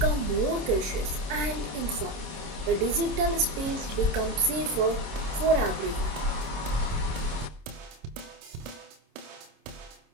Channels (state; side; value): late; left; 27 ms